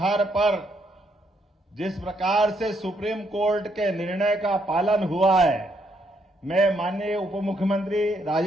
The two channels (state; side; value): normal; both; correlation 0.74